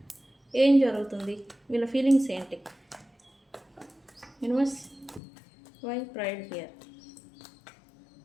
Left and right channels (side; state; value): right; drops out; at 5.2 s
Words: ఏం జరుగుతుంది, వీళ్ళ ఫీలింగ్స్ ఏంటి? Universe, why pride here?